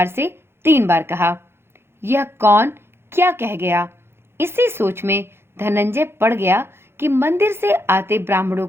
से 3 बार कहा। यह कौन क्या कह गया? इसी सोच में धनंजय पड़ गया कि मंदिर से आते ब्राह्मणों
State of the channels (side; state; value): left; late; 0.12 ms